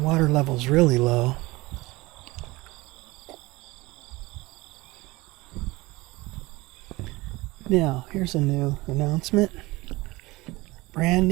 level's really low. Now, here's a new announcement. Brand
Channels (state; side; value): quieter; left; 21.2 dB